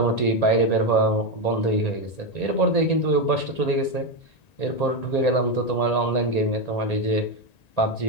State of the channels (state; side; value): late; right; 1.9 ms